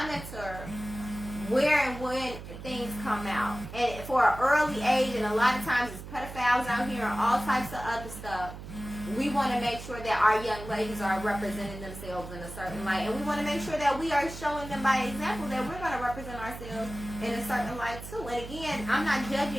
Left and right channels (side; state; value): right; noise; hum, 11 dB below the sound